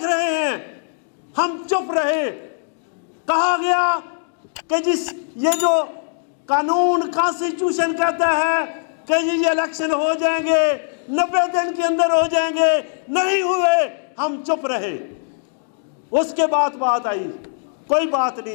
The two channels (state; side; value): silent; right; digital silence